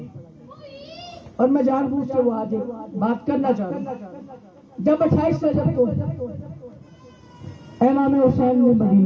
اور میں جان بوجھ کے وہ آج بات کرنا چاہ رہا ہوں. جب 28 رجب کو امام حسین نے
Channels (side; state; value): both; identical; correlation 1.00